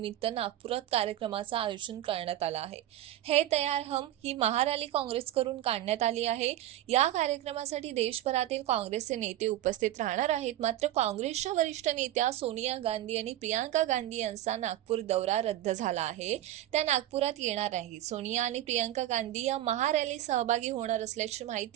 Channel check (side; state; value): left; quieter; 13.3 dB